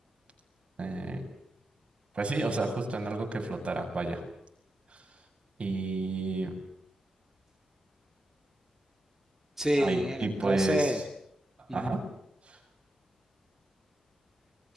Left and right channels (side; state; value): both; normal; correlation 0.88